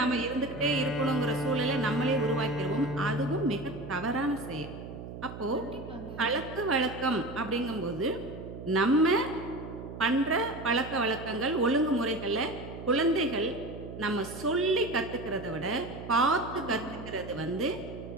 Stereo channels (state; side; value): noise; right; hum, 11 dB below the sound